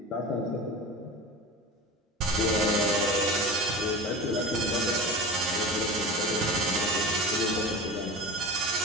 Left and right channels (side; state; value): both; normal; correlation 0.31